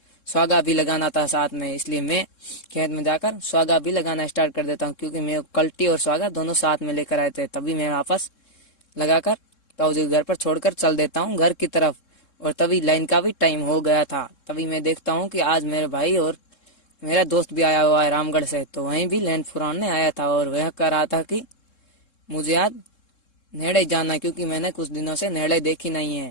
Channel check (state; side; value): late; right; 3.7 ms